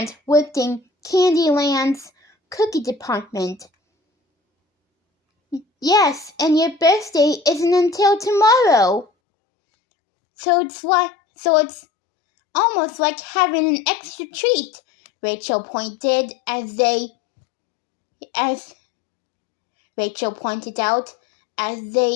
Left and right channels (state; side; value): drops out; right; at 9.1 s